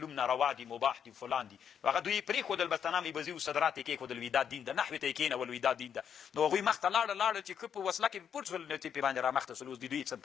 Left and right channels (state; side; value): quieter; right; 8.1 dB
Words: ناروا دي مباح دي فلان دي. نو هغه دوی پرېښودل بس تنامې بزي و صدرات یې کېښودل وي دا دین ده نحوې ته یې کېنول وي دا دین ده. نو هغوی مخته لاړل چې که په وسله کې پټ شول نو چې پرې باندې رامخته شول اوس د دوی څه هم